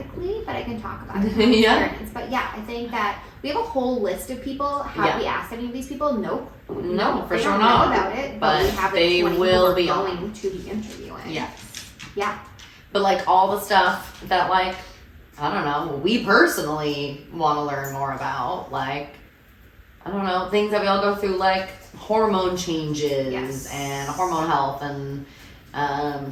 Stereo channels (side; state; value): both; identical; correlation 1.00